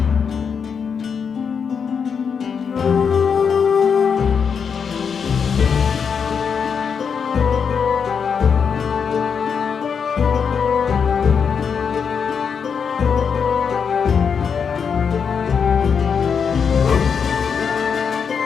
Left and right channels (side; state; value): right; quieter; 6.5 dB